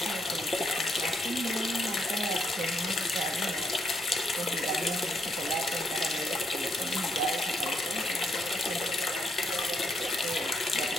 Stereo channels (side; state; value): both; normal; correlation 0.76